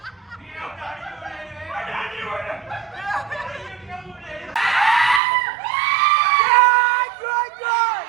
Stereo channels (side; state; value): left; drops out; at 5.2 s